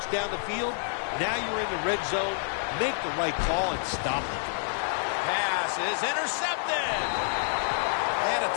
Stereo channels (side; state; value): right; silent; 59 dB below the other